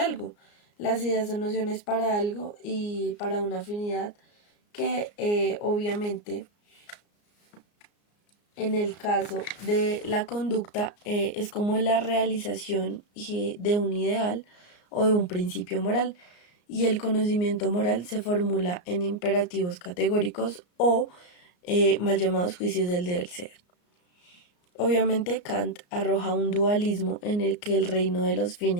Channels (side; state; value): right; late; 34 ms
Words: Las ideas son nociones para algo y para una afinidad que obviamente en el caso de la conducta es como la realización de un ideal o de un principio moral, y el conocimiento moral se formula en imperativos categóricos o mal llamados juicios del deber ser. Obviamente Kant arroja un dualismo en el que el reino de los